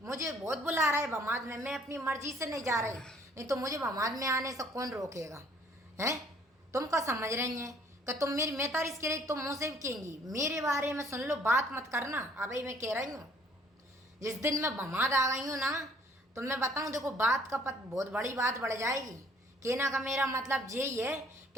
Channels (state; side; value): normal; both; correlation 0.59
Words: मुझे बहुत बुला रहा है बमाद में, मैं अपनी मर्जी से नहीं जा रही, नहीं तो मुझे बमाद में आने से कौन रोकेगा। हैं तुम क्या समझ रही हैं कि तुम मेरी मैं तारीफ के रही, तुम मुँह से भी कहेंगी मेरे बारे में, सुन लो बात मत करना। अभी मैं कह रही हूँ, जिस दिन मैं बमाद आ गई हूँ ना, तो मैं बताऊँ देखो बात का बहुत बड़ी बात बढ़ जाएगी। कहना का मेरा मतलब यही है